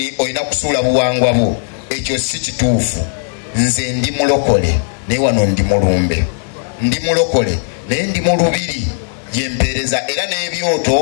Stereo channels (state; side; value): silent; right; 58 dB below the other